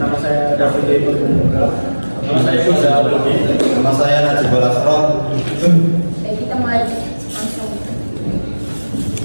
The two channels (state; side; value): inverted; both; correlation -1.00